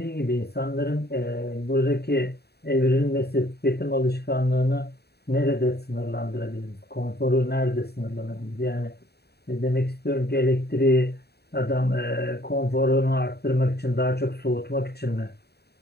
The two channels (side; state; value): right; late; 0.47 ms